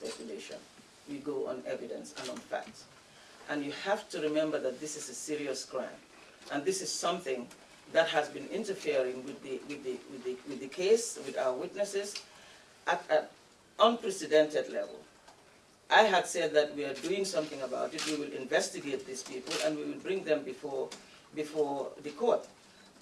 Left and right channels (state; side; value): identical; both; correlation 1.00